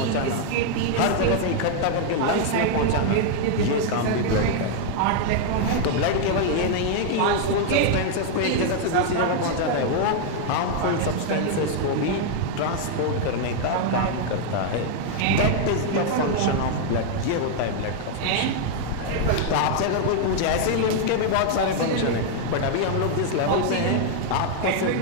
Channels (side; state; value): both; different; correlation 0.00